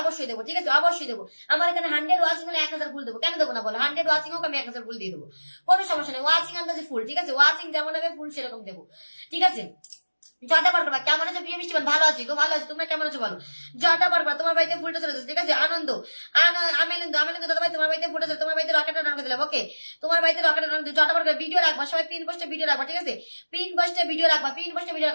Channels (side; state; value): both; inverted; correlation -1.00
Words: অবশ্যই দেবো, ঠিক আছে? অবশ্যই দেবো। আমার এখানে 100 ওয়াচিং হলে 1000 ফুল দেবো, কেন দেবো না বলো? 100 ওয়াচিং হোক, আমি 1000 ফুল দিয়ে দেবো, কোনো সমস্যা নেই। ওয়াচিং আন্দাজে ফুল, ঠিক আছে? ওয়াচিং যেমন হবে ফুল সেরকম দেবো, ঠিক আছে? ঝটাপট করবা। কেমন আছো প্রিয় মিষ্টি? ভালো আছি গো, ভালো আছি, তোমরা কেমন আছো বলো? ঝটাপট করবা, তোমার বাড়িতে ফুলটা চলে যাচ্ছে, ঠিক আছে? আমেলেন্দু দাদা ভাই তোমার বাড়িতে ফুলটা চলে, তোমার বাড়িতে রকেটটা ডান করে দিলাম, ওকে? তোমার বাড়িতে রকেটটা ডান করে ঝটাপট করে ভিডিও রাখবা, সবাই পিন পোস্টে ভিডিও রাখবা, ঠিক আছে? পিন পোস্টে ভিডিও রাখবা,